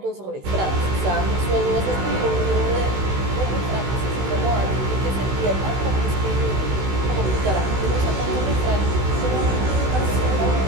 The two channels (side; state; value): left; late; 16 ms